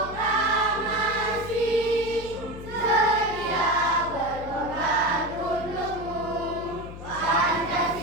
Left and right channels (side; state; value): left; noise; hum, 12 dB below the sound